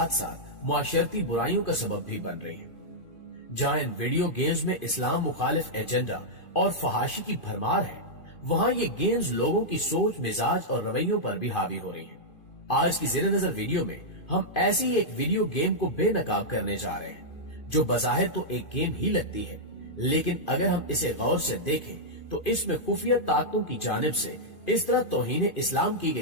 साथ मुआशरती बुराइयों का सबब भी बन रही हैं। जहाँ इन वीडियो गेम्स में इस्लाम मुखालिफ एजेंडा और फहाशी की भरमार है, वहाँ ये गेम्स लोगों की सोच, मिजाज और रवैयों पर भी हावी हो रही हैं। आज की ज़ेरे नजर वीडियो में हम ऐसी ही एक वीडियो गेम को बेनकाब करने जा रहे हैं, जो बज़ाहिर तो एक गेम ही लगती है, लेकिन अगर हम इसे गौर से देखें तो इसमें खुफिया ताकतों की जानिब से इस तरह तौहीन इस्लाम की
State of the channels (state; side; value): late; right; 2.4 ms